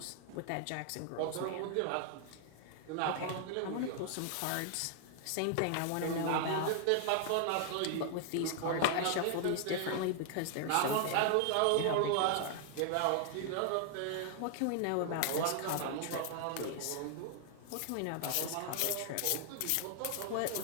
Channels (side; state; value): both; different; correlation 0.00